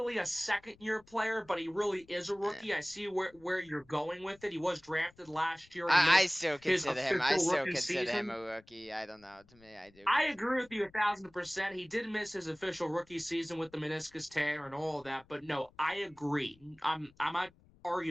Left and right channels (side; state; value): left; noise; rumble, 29 dB below the sound